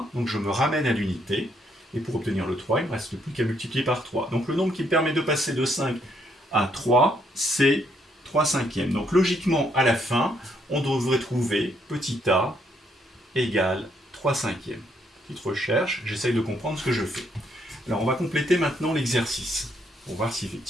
donc je me ramène à l'unité. Et pour obtenir le 3, il ne me reste plus qu'à multiplier par 3. Donc le nombre qui me permet de passer de 5 à 3, c'est 3 cinquièmes. Donc logiquement, à la fin, on devrait trouver petit a égale 3 cinquièmes. Petite recherche, j'essaye de comprendre ce que je fais. Alors on va compléter maintenant l'exercice, pour voir si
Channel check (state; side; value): normal; both; correlation 0.72